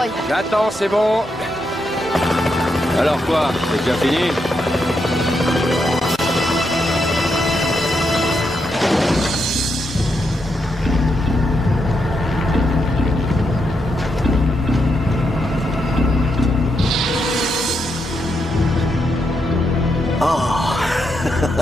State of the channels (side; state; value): both; normal; correlation 0.82